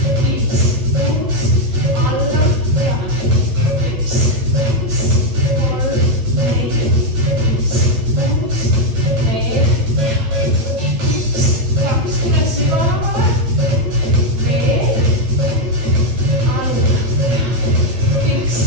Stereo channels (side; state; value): left; late; 8.8 ms